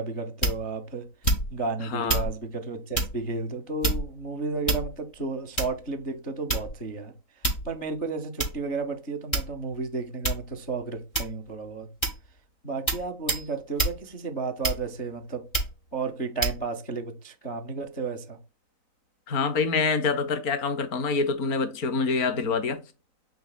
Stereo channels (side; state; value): right; late; 3.7 ms